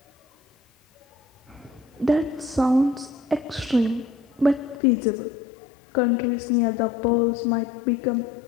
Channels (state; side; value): drops out; right; at 4.8 s